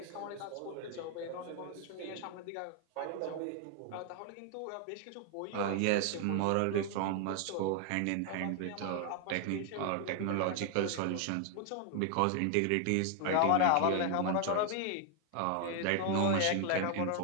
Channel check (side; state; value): both; different; correlation 0.00